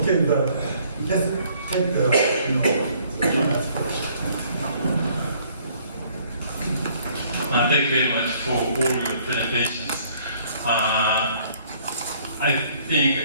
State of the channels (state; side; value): inverted; both; correlation -0.61